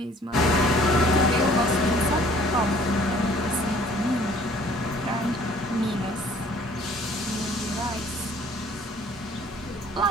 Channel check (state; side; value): normal; both; correlation 0.55